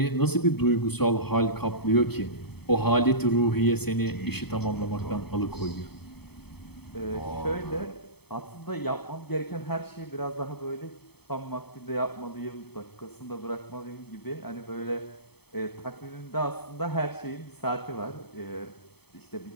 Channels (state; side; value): late; right; 0.97 ms